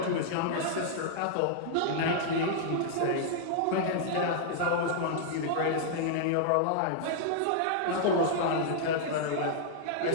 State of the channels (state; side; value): different; both; correlation -0.01